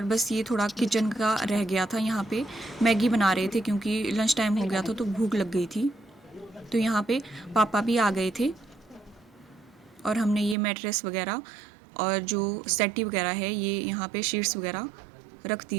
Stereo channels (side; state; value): left; drops out; at 10.6 s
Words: बस ये थोड़ा किचन का रह गया था। यहाँ पे मैगी बना रहे थे क्योंकि लंच टाइम हो गया था तो भूख लग गई थी। तो यहाँ पे पापा भी आ गए थे और हमने ये मैट्रेस वगैरह और जो सेटी वगैरह है ये यहाँ पे शीट्स वगैरह रख दी